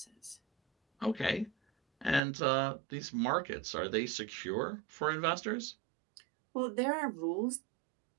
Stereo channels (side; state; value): left; drops out; at 2.2 s